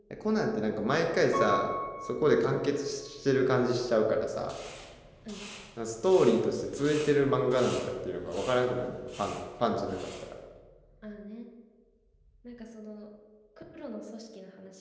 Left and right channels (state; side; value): identical; both; correlation 1.00